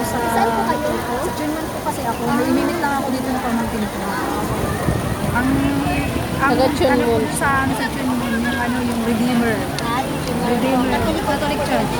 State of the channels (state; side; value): identical; both; correlation 1.00